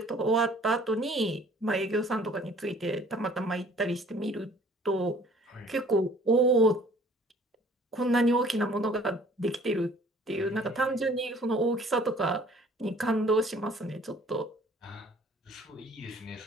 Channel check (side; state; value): both; normal; correlation 0.54